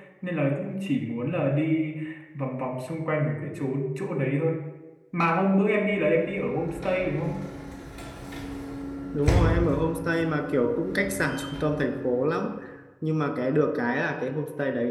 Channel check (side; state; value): both; identical; correlation 1.00